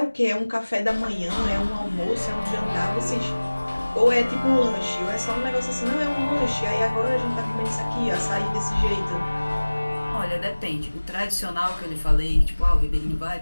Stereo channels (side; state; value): both; inverted; correlation -1.00